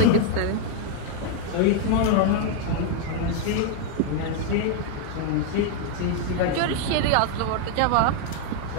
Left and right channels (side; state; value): both; different; correlation 0.00